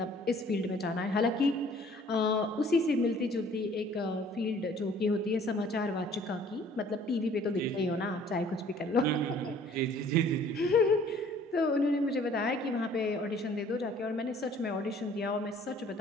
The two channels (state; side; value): normal; both; correlation 0.55